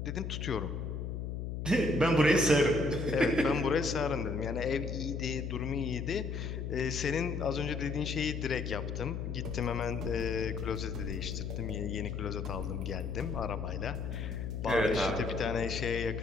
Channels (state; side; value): noise; left; hum, 4 dB below the sound